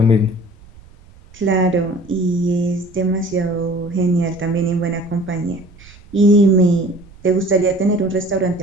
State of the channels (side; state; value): right; noise; rumble, 23 dB below the sound